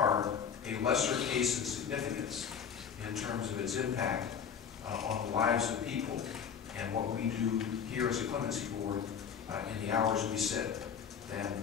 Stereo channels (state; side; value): quieter; right; 7.4 dB